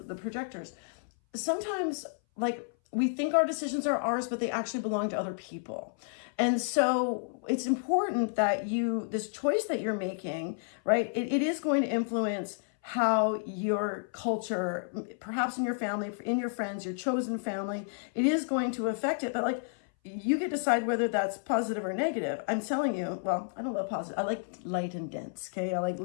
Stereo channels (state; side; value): silent; right; 57 dB below the other